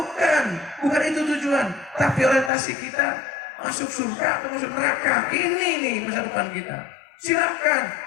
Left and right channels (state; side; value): drops out; right; at 2.5 s